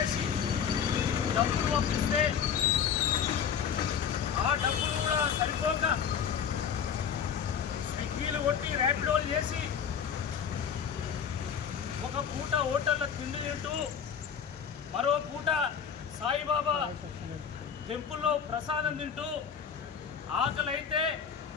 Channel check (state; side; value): quieter; right; 7.6 dB